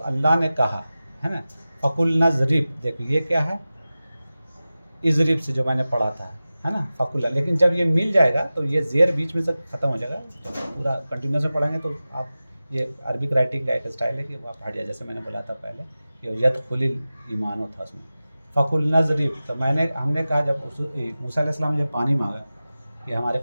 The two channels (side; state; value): both; inverted; correlation -0.96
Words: अल्लाह ने कहा, है ना। फ़कुल नज़रिब, देखो ये क्या है, इज़रिब से जो मैंने पढ़ा था, है ना, फ़कुल। लेकिन जब ये मिल जाएगा तो ये ज़ेर बीच में से ख़त्म हो जाएगा, तो पूरा कंटिन्यूस में पढ़ेंगे तो आप, ये अरबिक राइटिंग का एक स्टाइल है कि वो आप हट जाए, जैसे मैंने बोला था पहले, ये यदखुलिल ईमानो था उसमें। फ़कुल नज़रिब, तो हमने कहा जब मूसा अलैहि सलाम ने जब पानी मांगा कि हमारे